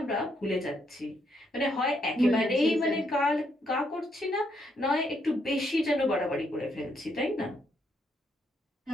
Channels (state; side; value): normal; both; correlation 0.75